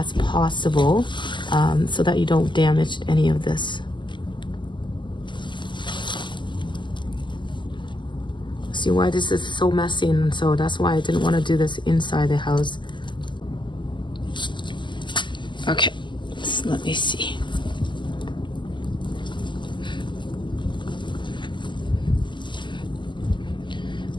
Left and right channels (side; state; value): right; late; 0.23 ms